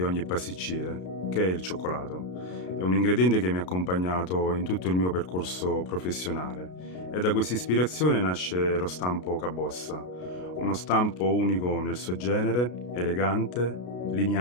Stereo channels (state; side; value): late; right; 33 ms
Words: ogni pasticcere, che è il cioccolato. È un ingrediente che mi ha accompagnato in tutto il mio percorso professionale e da questa ispirazione nasce lo stampo Cabossa, uno stampo unico nel suo genere, elegante,